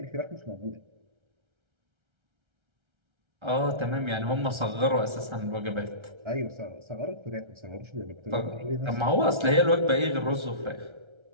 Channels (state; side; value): late; left; 1.3 ms